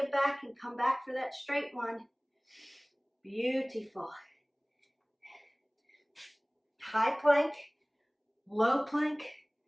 back and come back for that straight one. Beautiful. High plank, low plank,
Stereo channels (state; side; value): identical; both; correlation 1.00